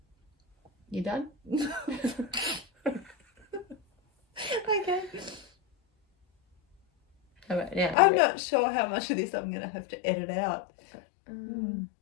You done? Okay. All right, now I'm not sure how much of this I'm going to have to edit out.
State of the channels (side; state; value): right; drops out; at 8.0 s